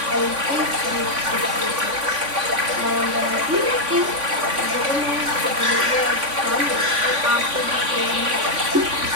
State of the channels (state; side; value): late; left; 3.5 ms